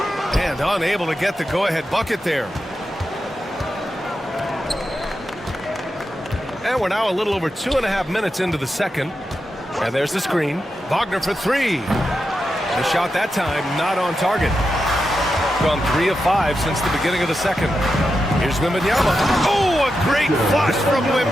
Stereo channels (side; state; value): both; normal; correlation 0.88